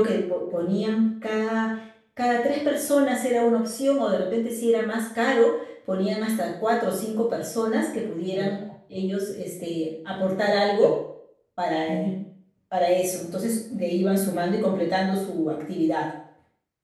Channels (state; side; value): identical; both; correlation 1.00